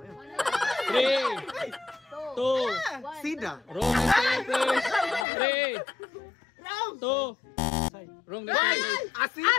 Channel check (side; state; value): right; drops out; at 5.2 s